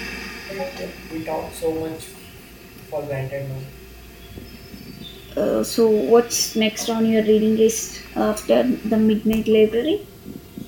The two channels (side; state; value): both; identical; correlation 1.00